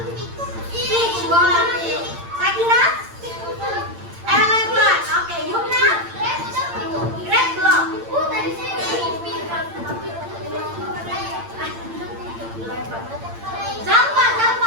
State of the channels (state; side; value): late; left; 8.8 ms